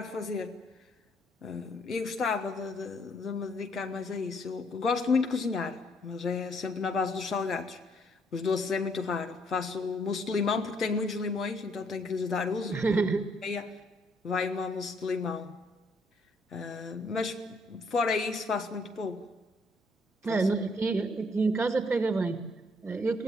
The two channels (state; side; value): normal; both; correlation 0.68